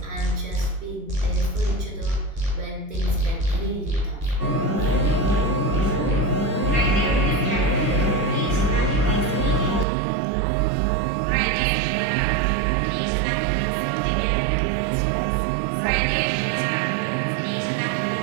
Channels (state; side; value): drops out; left; at 9.9 s